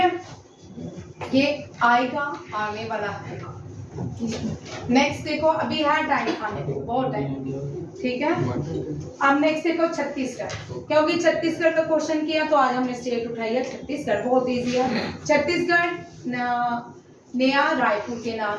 ये आएगा, आने वाला है। नेक्स्ट देखो, अभी है टाइम खाने को, बहुत टाइम, ठीक है। अब नेक्स्ट देखो छत्तीसगढ़, क्योंकि छत्तीसगढ़ का क्वेश्चन किया तो आज हमने स्टेट उठाई है छत्तीसगढ़, बहुत इजी है। छत्तीसगढ़ नया रायपुर के नाम,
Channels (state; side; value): identical; both; correlation 1.00